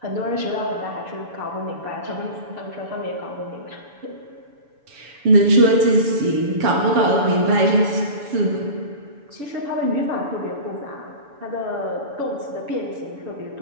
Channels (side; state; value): left; late; 6.9 ms